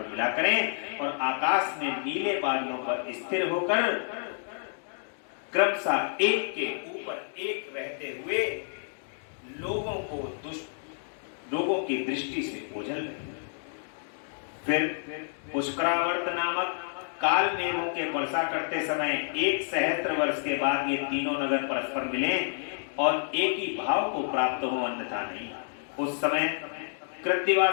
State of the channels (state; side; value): silent; right; digital silence